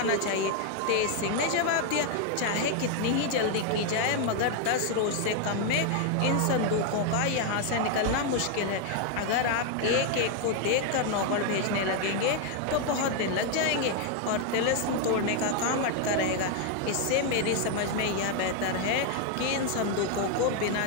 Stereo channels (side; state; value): both; different; correlation 0.01